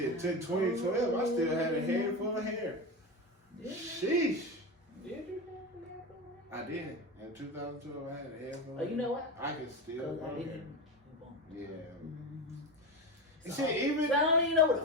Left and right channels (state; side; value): normal; both; correlation 0.20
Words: Took 2012. I still had a head full of hair. Sheesh. Did you? I did. In 2012, I had a head full of Oh, you know what? I can still I grow hair. didn't. Yeah. So, See, even I don't even know